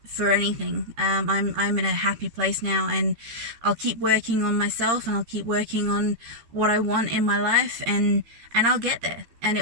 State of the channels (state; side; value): late; left; 13 ms